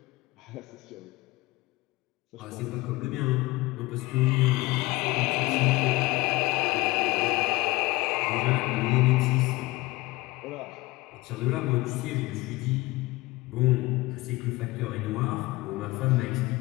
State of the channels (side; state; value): right; quieter; 20.9 dB